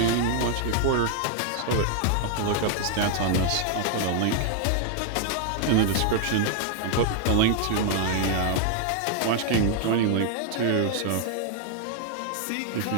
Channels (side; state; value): both; different; correlation 0.00